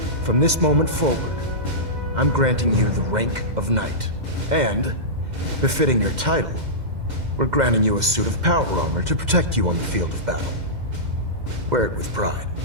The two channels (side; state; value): left; late; 2.1 ms